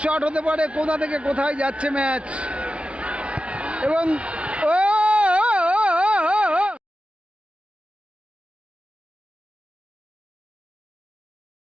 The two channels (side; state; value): left; late; 0.060 ms